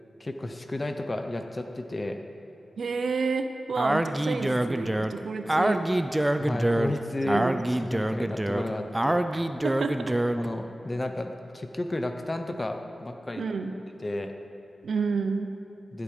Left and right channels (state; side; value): normal; both; correlation 0.96